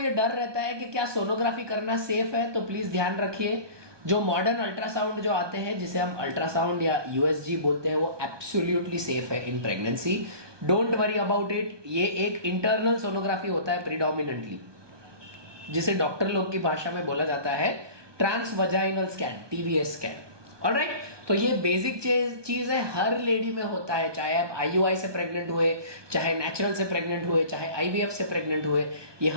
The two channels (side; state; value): left; late; 1.2 ms